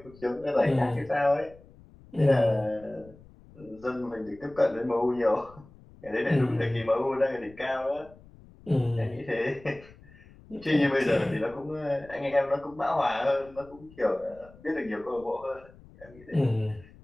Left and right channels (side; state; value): left; noise; rumble, 23 dB below the sound